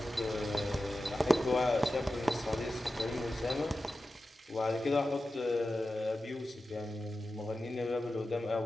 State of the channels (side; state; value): both; normal; correlation 0.93